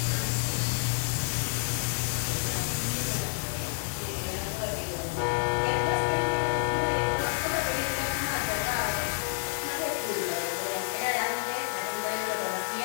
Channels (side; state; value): right; silent; 56 dB below the other